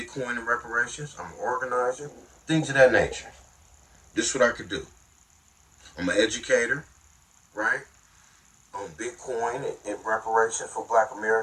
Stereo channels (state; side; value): identical; both; correlation 1.00